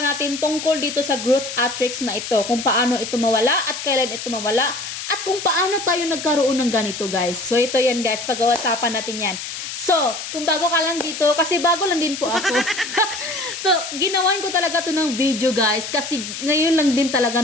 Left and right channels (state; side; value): noise; left; hiss, 8 dB below the sound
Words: natin tungkol dito sa growth matrix na ito. Kung paano ito mawala at kailan ito mawala. At kung paano tayo nagkaroon ng ganito, guys. So, ito yan, guys. Pag-uusapan natin yan. So, kung bago ka lang dito, kasi bago lang din po ako. So, ginawan ko talaga to ng video, guys. Kasi ngayon lang din talaga